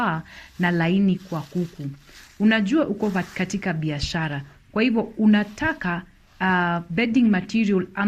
na laini kwa kuku. Unajua uko katika biashara. Kwa hivyo unataka bedding material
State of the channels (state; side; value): identical; both; correlation 1.00